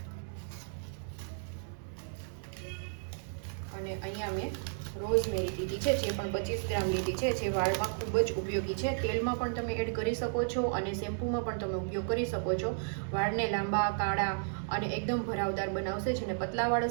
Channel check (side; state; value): left; silent; 55 dB below the other